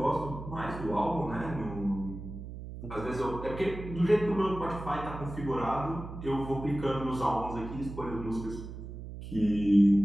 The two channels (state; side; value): noise; right; hum, 10 dB below the sound